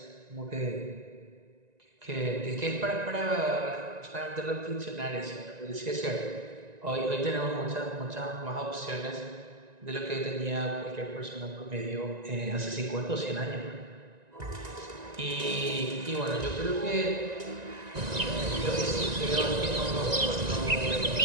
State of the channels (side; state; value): left; late; 1.9 ms